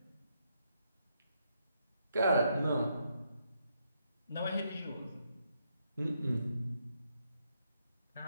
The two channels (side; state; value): both; inverted; correlation -0.77